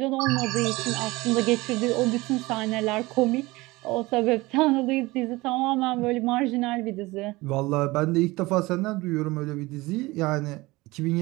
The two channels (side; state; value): left; quieter; 21.2 dB